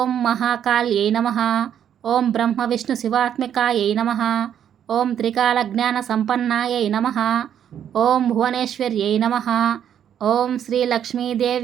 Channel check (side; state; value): left; quieter; 9.4 dB